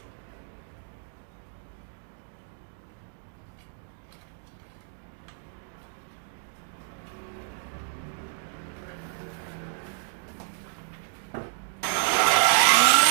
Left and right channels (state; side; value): silent; left; 58 dB below the other